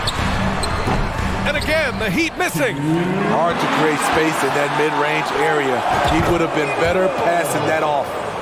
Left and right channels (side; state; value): both; identical; correlation 1.00